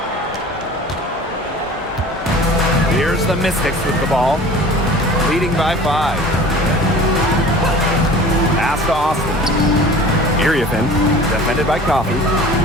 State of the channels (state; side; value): normal; both; correlation 0.43